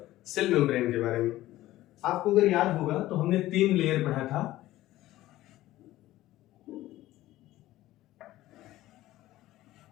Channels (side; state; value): right; quieter; 15.7 dB